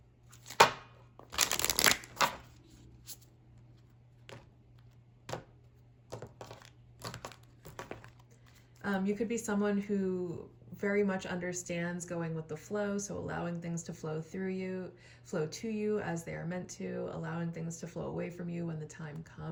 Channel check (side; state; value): both; identical; correlation 1.00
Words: You could be someone who very much understands going with the flow, so allowing things to flow to you as they are meant to, allowing things to flow away from you when the time